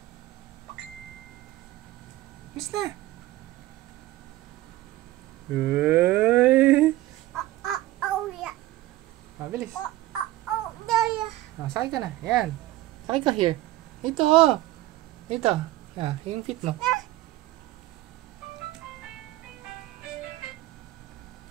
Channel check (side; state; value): left; quieter; 16.5 dB